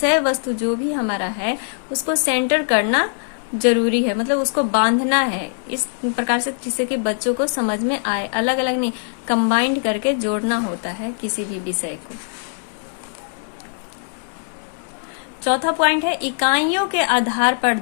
वस्तु जो भी हमारा है उसको सेंटर करना जरूरी है, मतलब उसको बांधना है इस प्रकार से जिससे कि बच्चों को समझ में आए, अलग अलग नहीं कंबाइंड करके जोड़ना होता है किसी भी विषय को। चौथा पॉइंट है इकाइयों के आधार पर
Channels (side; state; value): right; silent; digital silence